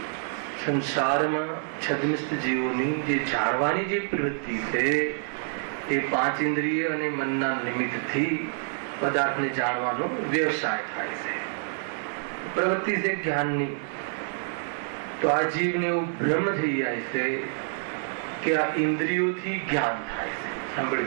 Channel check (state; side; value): silent; left; digital silence